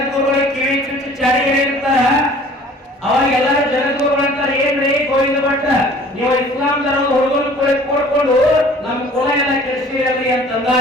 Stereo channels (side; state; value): both; normal; correlation 0.50